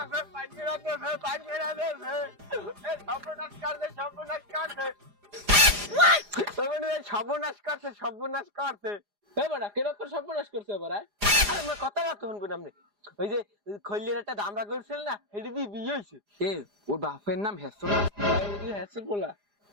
সর্বনাশ করছে, সর্বনাশ করছে। বেড়া কিরকম সর্বনাশ করছে এবার? আরে আমার কথা তো শুনবেন আপনি। ওই যে খৈলের একটা দামরা করছিল না, সেটা দিয়ে বিয়ে হয়েছে। এ ওর বাপের নাম হেসো না? হ্যাঁ বলা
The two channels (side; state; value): left; late; 4.9 ms